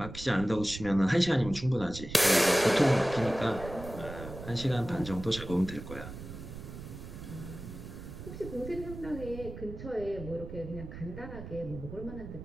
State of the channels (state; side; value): noise; right; rumble, 11 dB below the sound